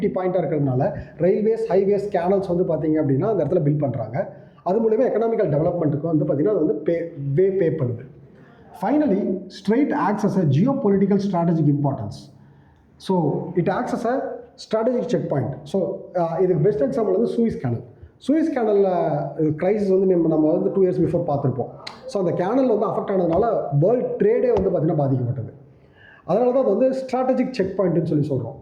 பாயிண்ட்டாக இருக்கிறதுனால ரயில்வேஸ், ஹைவேஸ், கேனல்ஸ் வந்து பார்த்தீங்க அப்படின்னா அந்த இடத்துல பில்ட் பண்ணுறாங்க. அது மூலமா எக்கனாமிக்கல் டெவலப்மெண்ட்டுக்கு வந்து பார்த்திங்கன்னா அது வந்து பே பண்ணுது. Finally strait acts as a geo political strategic importance. So it acts as a strategic check point. So இதுக்கு பெஸ்ட் எக்ஸாம்பிள் வந்து சூயிஸ் கேனலில் க்ரைசிஸ் வந்து நம்ம வந்து 2 years பிஃபோர் பார்த்துருப்போம். ஸோ அந்த கேனல் வந்து அஃபெக்ட் ஆனதுனால வேர்ல்டு ட்ரேடே வந்து பார்த்திங்கன்னா பாதிக்கப்பட்டது. அதனால தான் அது வந்து ஸ்ட்ராட்டஜிக் செக் பாயிண்ட்னு சொல்கிறோம்.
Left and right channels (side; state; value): both; identical; correlation 1.00